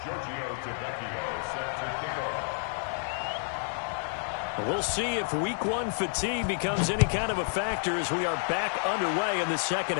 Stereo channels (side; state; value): right; silent; 58 dB below the other